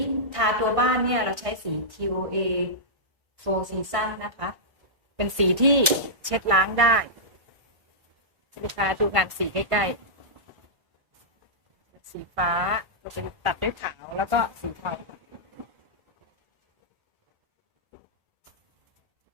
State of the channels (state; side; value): late; left; 1.6 ms